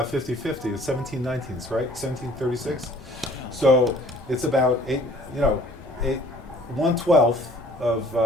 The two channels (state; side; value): normal; both; correlation 0.54